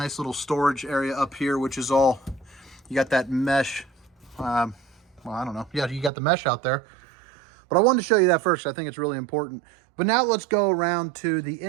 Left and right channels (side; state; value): left; drops out; at 6.1 s